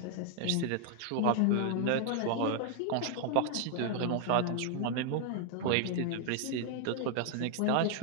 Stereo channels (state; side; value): different; both; correlation 0.00